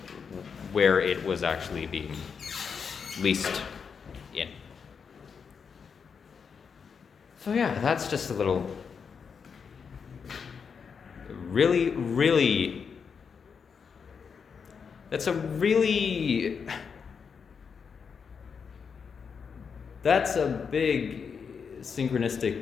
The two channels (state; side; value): quieter; right; 6.2 dB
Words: where it was actually being leased in. So yeah, that's just a little that's a big